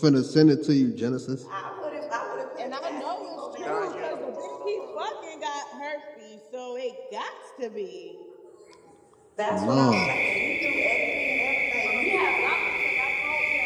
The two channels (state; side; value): identical; both; correlation 1.00